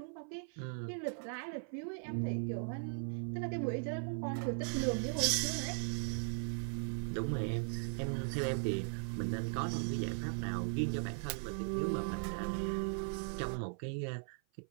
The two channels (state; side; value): silent; left; 52 dB below the other